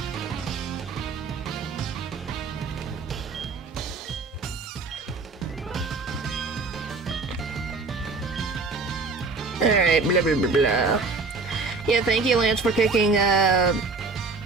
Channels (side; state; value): left; quieter; 4.1 dB